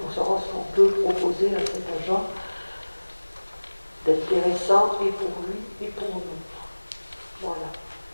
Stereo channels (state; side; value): inverted; both; correlation -1.00